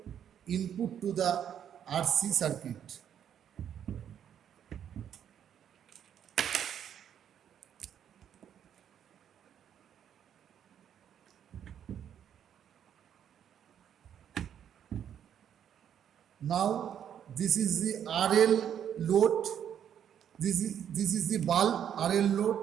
input to the RC circuit. Now this is the RL load. This is the bulb RL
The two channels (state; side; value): quieter; left; 9.2 dB